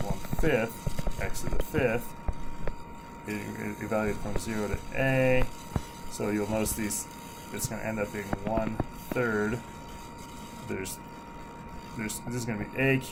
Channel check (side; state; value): both; identical; correlation 1.00